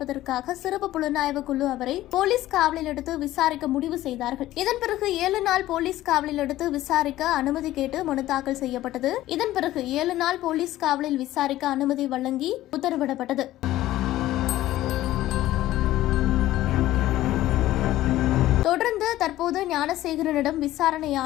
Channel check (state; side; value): quieter; right; 15.0 dB